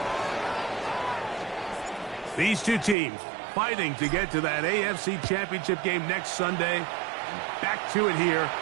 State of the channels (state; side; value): drops out; left; at 3.0 s